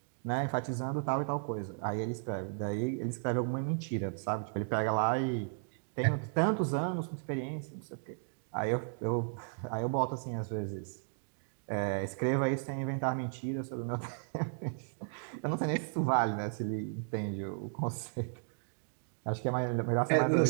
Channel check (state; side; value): silent; left; digital silence